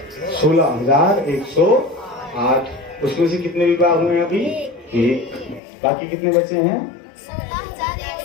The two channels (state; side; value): drops out; right; at 5.6 s